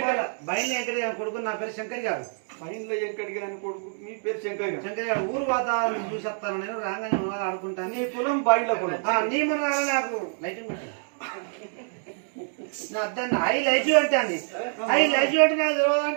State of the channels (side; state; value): left; silent; 60 dB below the other